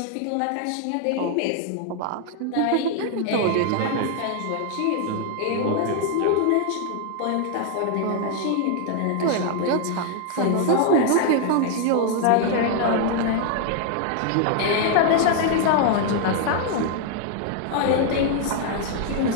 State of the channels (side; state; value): both; different; correlation 0.00